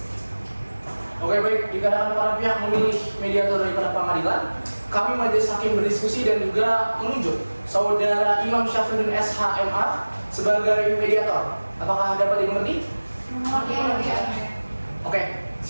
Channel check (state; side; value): inverted; both; correlation -1.00